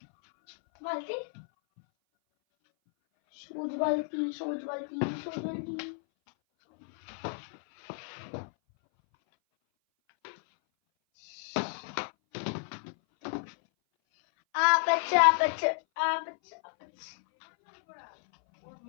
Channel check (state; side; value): silent; right; 57 dB below the other